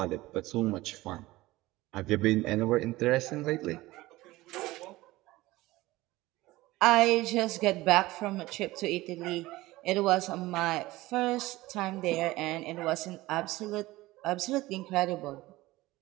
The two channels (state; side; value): quieter; left; 18.6 dB